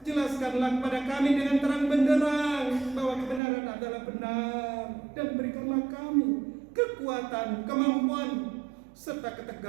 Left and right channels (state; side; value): drops out; left; at 3.4 s